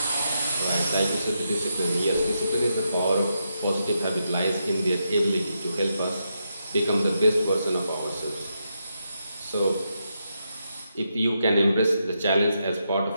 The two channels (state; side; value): inverted; both; correlation -0.83